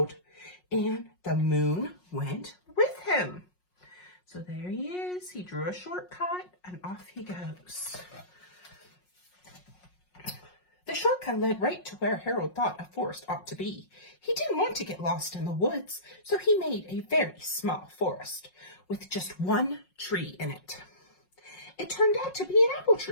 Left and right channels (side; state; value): right; late; 5.5 ms